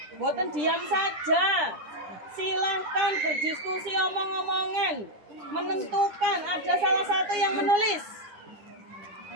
Boten diam saja. Silahkan berdiskusi, omong-omongan. Menentukan, ada salah satu yang menulis.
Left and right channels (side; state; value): left; late; 9.7 ms